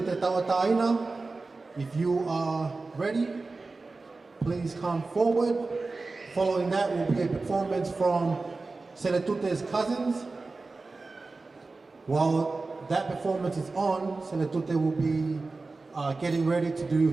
Tawataina. If you are ready, please come forward. Following that will be a performance from Sele Tute's cousins. While that performance is on, Sele Tute will be getting ready to do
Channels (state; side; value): quieter; left; 3.7 dB